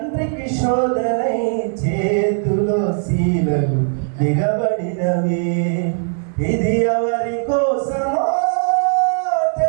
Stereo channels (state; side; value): silent; left; digital silence